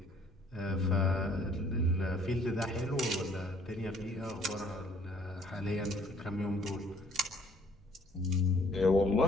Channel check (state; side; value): normal; both; correlation 0.60